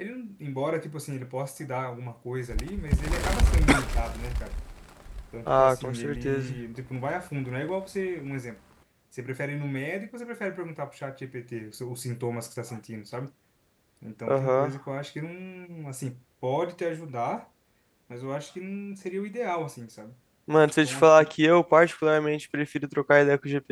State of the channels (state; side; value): identical; both; correlation 1.00